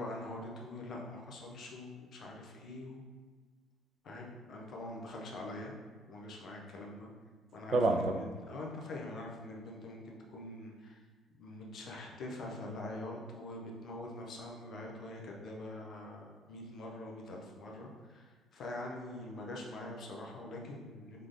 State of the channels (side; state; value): both; normal; correlation 0.63